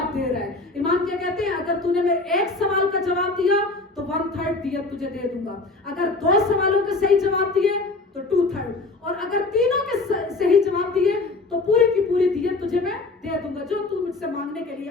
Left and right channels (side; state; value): right; quieter; 3.4 dB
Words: دے رہا ہے. امام کیا کہتے ہیں, اگر تو نے میرے ایک سوال کا جواب دیا تو 1/3 دیت تجھے دے دوں گا, اگر 2 سوالوں کے صحیح جواب دیے تو 2/3, اور اگر تینوں کے صحیح جواب دیے تو پوری کی پوری دیت تجھے میں دے دوں گا جو تو مجھ سے مانگنے کے لیے